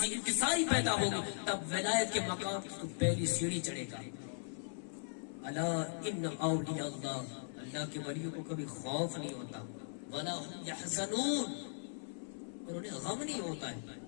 انکساری پیدا ہوگی، تب ولایت کے مقام کی تو پہلی سیڑھی چڑھے گا. الا ان اولیاء اللہ، اللہ کے ولیوں کو کبھی خوف نہیں ہوتا، ولا هم يحزنون، اور انہیں غم نہیں ہوتا ہے.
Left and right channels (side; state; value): right; silent; 52 dB below the other